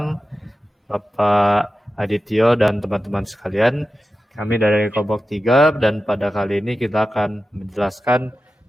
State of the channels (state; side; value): normal; both; correlation 0.93